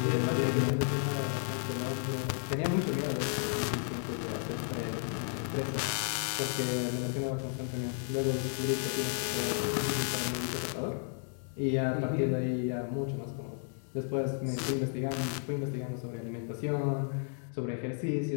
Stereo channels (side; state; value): right; silent; 56 dB below the other